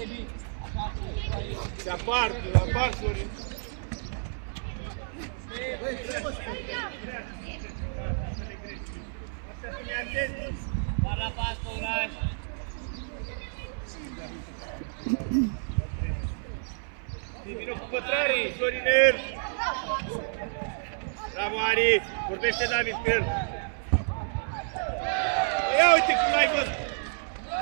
Se apar, Florin. Par la pas, Păulaș. Vino cu pătrarii, Florinel. Bravo, Ari. Vorbește David pe el. Ia uite cum l-ai văzut.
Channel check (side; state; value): left; silent; 58 dB below the other